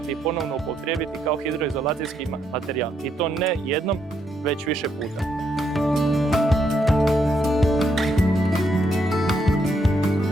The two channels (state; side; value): normal; both; correlation 0.76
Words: i ponovno upotrijebiti kao hidroizolacijski materijal. I to ne jednom, već više puta.